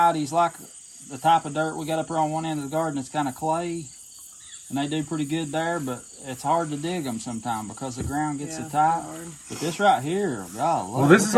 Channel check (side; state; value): both; identical; correlation 1.00